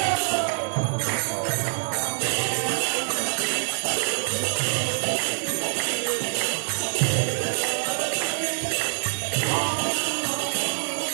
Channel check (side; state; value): left; silent; digital silence